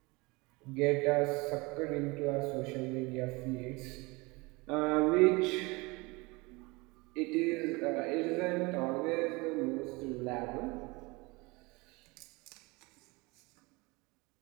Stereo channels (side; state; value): left; quieter; 25.1 dB